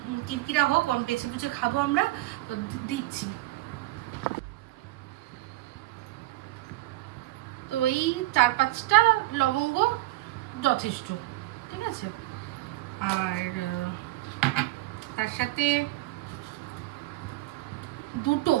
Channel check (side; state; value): left; quieter; 18.6 dB